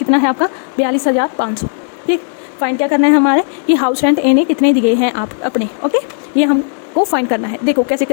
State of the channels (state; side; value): silent; right; digital silence